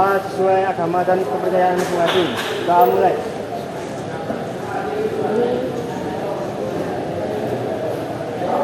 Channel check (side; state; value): both; identical; correlation 1.00